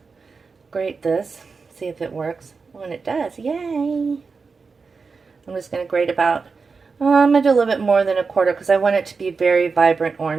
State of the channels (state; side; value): quieter; left; 4.8 dB